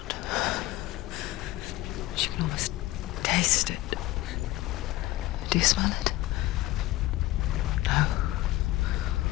She can almost taste it. Do you smell it? No.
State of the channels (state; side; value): quieter; right; 17.0 dB